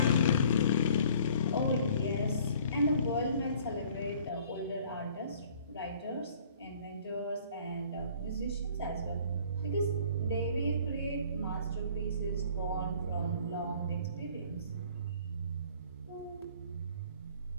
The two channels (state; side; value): inverted; both; correlation -0.53